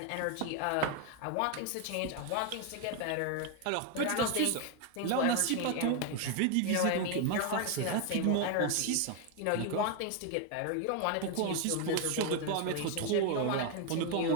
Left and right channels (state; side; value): different; both; correlation 0.01